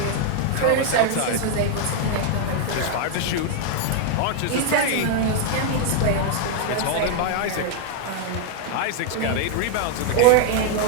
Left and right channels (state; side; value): different; both; correlation 0.00